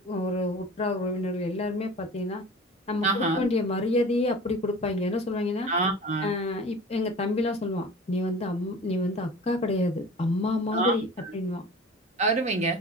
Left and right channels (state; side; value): normal; both; correlation 0.39